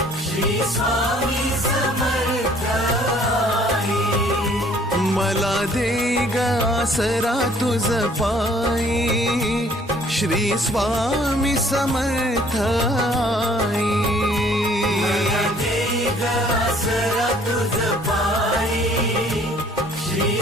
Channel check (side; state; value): both; normal; correlation 0.58